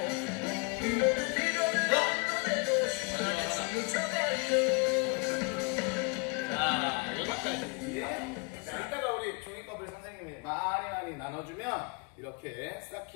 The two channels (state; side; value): quieter; right; 33.2 dB